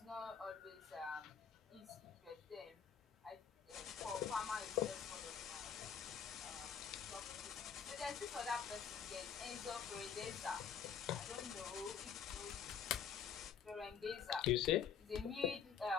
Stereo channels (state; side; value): quieter; right; 7.5 dB